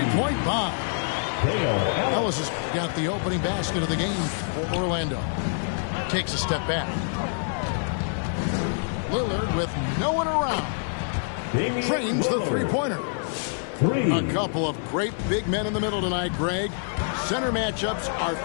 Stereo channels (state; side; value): silent; right; digital silence